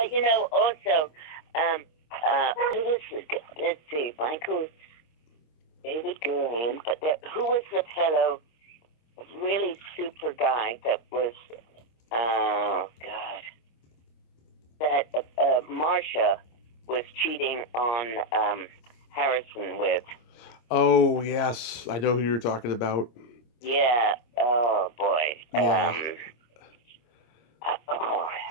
you know, also, who was let's see, Michael, David Gurian, but who was the fellow, really super guy that was, oh God, that Marsha was cheating on Harrison with. Oh yes, I know who you're talking about. Yeah. Oh boy. Yeah.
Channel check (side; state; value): right; late; 26 ms